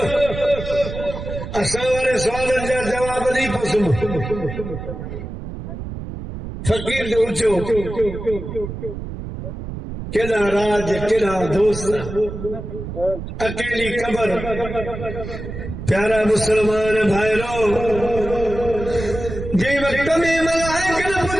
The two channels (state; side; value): noise; right; rumble, 8 dB below the sound